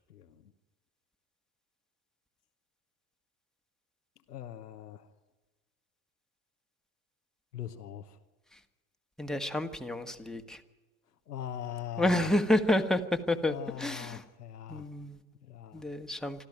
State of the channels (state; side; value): normal; both; correlation 0.78